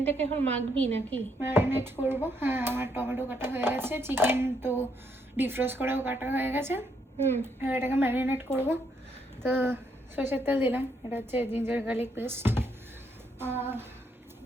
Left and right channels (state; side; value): normal; both; correlation 0.74